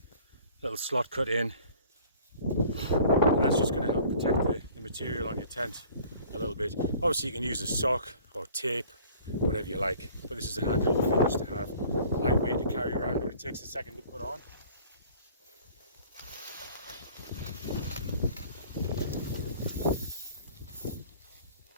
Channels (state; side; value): inverted; both; correlation -0.51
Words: slot cut in, and that's just going to help protect the material on your tent a little bit. Obviously you can use a sock or tape, whatever you like, but this is a handy little thing just to have, lightweight to carry around, but it takes a second to put on.